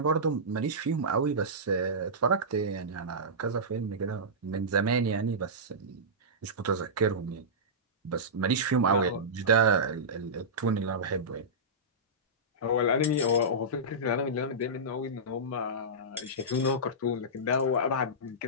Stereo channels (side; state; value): both; normal; correlation -0.16